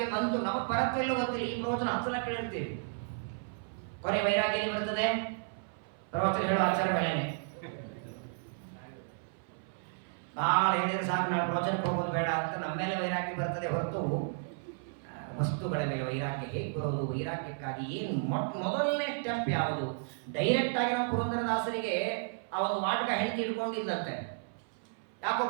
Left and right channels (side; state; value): left; silent; 56 dB below the other